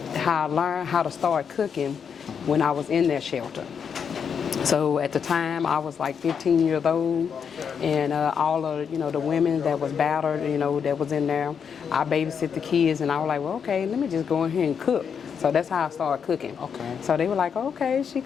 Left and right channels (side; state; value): right; quieter; 7.0 dB